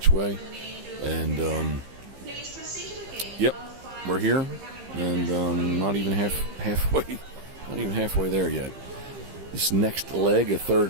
way. And, yep, we're here. And not even halfway. Not even halfway there yet. This next leg, a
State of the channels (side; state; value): left; late; 15 ms